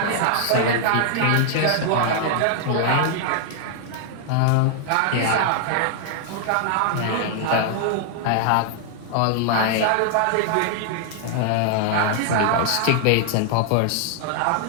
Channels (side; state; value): both; different; correlation -0.01